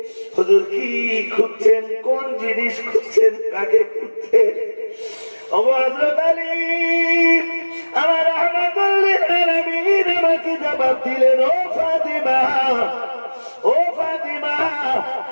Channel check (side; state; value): both; inverted; correlation -1.00